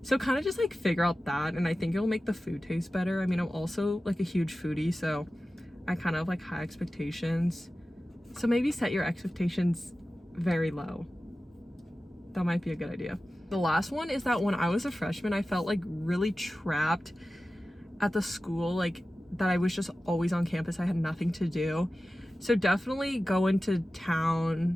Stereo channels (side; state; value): both; normal; correlation 0.95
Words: So kind of just like figure out that, and I think it'll make the food taste better. I mean, I'm also like a huge foodie, so I kind of have like high expectations. So maybe set your expectations very low. That might be a good idea. The last one is that when I was a freshman, I felt like really trapped at the school, like that I was just always on campus. I had nothing to do. So definitely go into